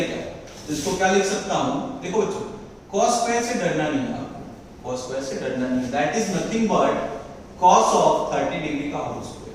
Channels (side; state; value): both; identical; correlation 1.00